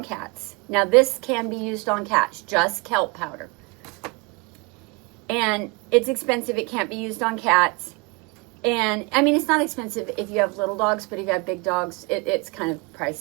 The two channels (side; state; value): left; quieter; 27.8 dB